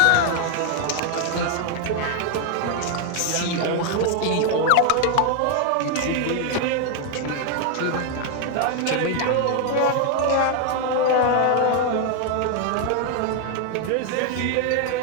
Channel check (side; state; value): both; different; correlation 0.00